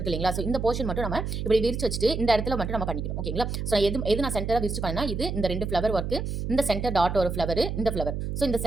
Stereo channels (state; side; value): noise; right; hum, 3 dB below the sound